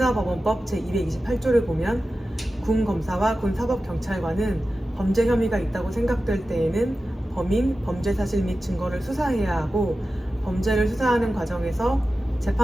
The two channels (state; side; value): normal; both; correlation 0.93